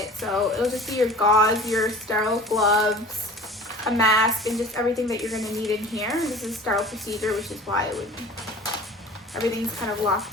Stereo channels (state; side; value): normal; both; correlation 0.42